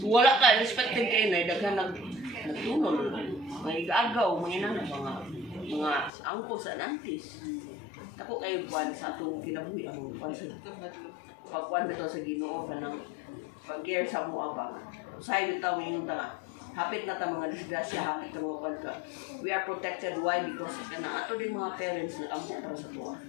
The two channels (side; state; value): right; drops out; at 6.1 s